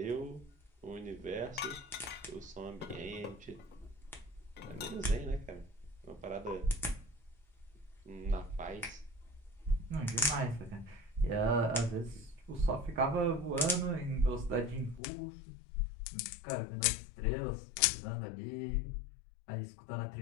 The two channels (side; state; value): right; drops out; at 15.0 s